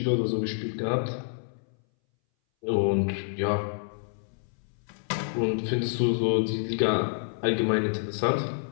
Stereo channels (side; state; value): right; silent; 59 dB below the other